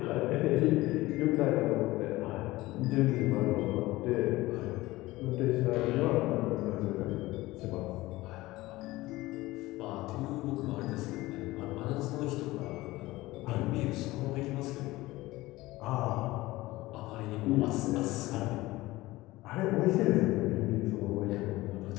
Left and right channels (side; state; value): right; quieter; 18.8 dB